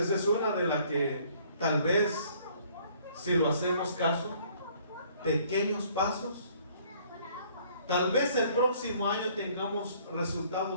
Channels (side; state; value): both; inverted; correlation -0.59